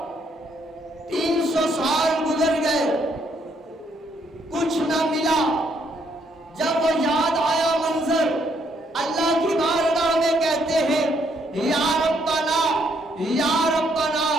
300 سال گزر گئے، کچھ نہ ملا۔ جب وہ یاد آیا منظر، اللہ کی بارگاہ میں کہتے ہیں یا ربنا یا ربنا،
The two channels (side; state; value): both; normal; correlation 0.71